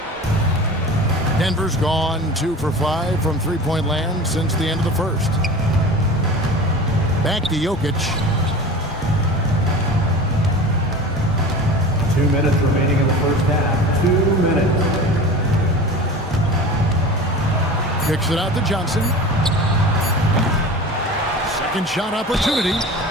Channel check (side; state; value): both; normal; correlation 0.35